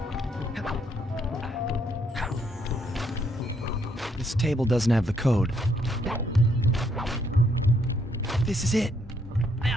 This table doesn't have the code. This is it.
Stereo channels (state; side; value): normal; both; correlation 0.71